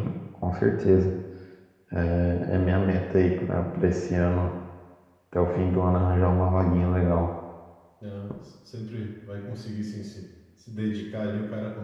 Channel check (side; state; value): both; identical; correlation 1.00